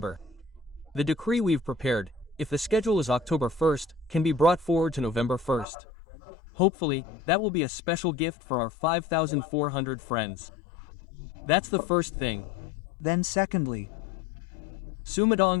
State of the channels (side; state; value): right; drops out; at 5.7 s